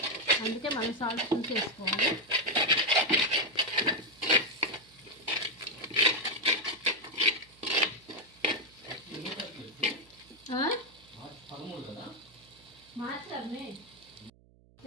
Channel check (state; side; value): noise; right; hum, 28 dB below the sound